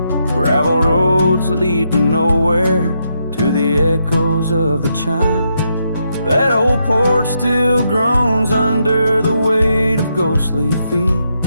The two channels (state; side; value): inverted; both; correlation -0.80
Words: Gravel roads lead to nowhere, to the echoes of the chime. That old porch still groans under the weight of ghostly feet,